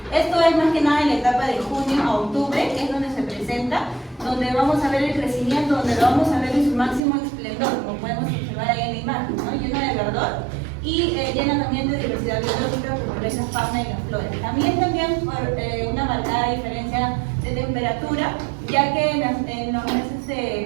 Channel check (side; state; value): left; drops out; at 7.0 s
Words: Esto es más que nada en la etapa de junio a octubre, que es donde se presenta, donde vamos a ver el crecimiento, donde lo vamos a ver en su máximo esplendor, como podemos observar ahí en la imagen, ¿no? Llena de verdor y llena también de diversidad biológica por esa fauna y la flora. También por una marcada diferencia de temperatura, ya que en los meses de